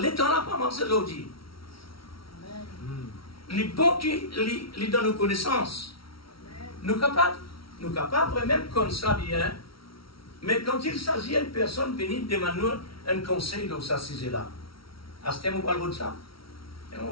là pas avancé aujourd'hui. Les bons qui les donnent nos connaissances. Nous capables même comme ça bien. Mais quand il s'agit d'une personne venir demander un conseil dans sa sujet-là, à ce thème, on parle de ça. Et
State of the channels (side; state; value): right; late; 0.75 ms